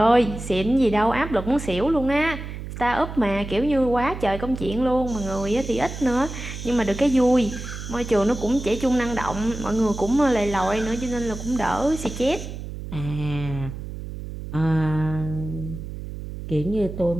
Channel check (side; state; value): right; noise; hum, 9 dB below the sound